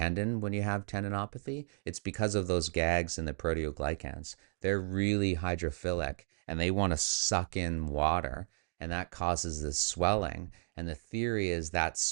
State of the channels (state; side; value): silent; left; digital silence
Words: when you have tendinopathy, it's because of those GAGs and the proteoglycans. They're really hydrophilic and they want to suck in water, and that causes this swelling. And the theory is that